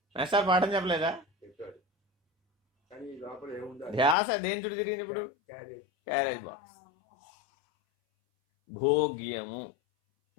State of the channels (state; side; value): drops out; right; at 4.2 s